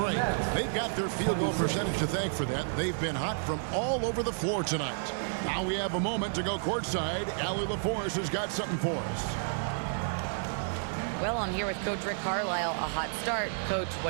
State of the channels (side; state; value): left; silent; digital silence